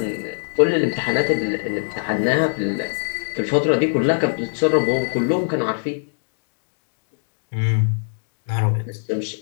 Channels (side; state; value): right; silent; digital silence